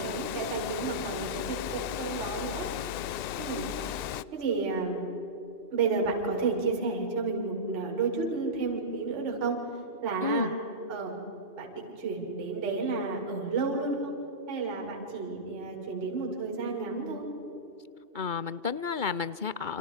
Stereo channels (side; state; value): left; late; 2.7 ms